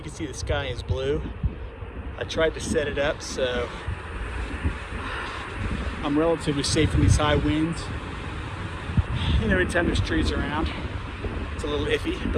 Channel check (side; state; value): both; identical; correlation 1.00